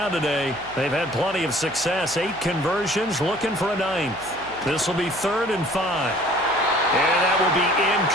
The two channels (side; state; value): right; noise; hum, 20 dB below the sound